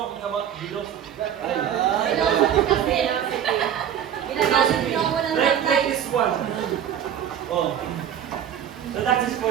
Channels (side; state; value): left; quieter; 9.4 dB